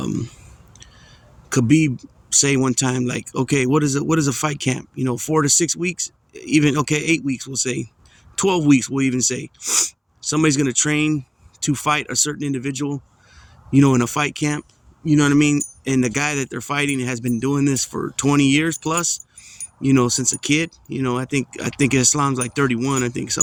Khabib say one time, like, okay, what is a fight camp? 4 to 6 weeks, even 8 weeks, we'll say 12 weeks, we'll even say. Somebody's gonna train to fight a certain individual, in a fight camp, you know what I mean? And the guy that they're fighting has been doing this for 20 years plus, since a kid. I think Islam's like 31, I think,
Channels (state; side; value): identical; both; correlation 1.00